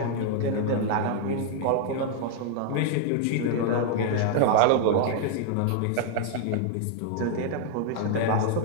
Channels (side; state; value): both; different; correlation 0.00